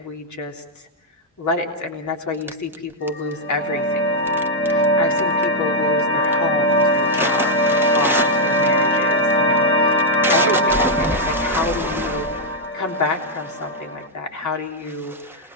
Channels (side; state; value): both; normal; correlation -0.03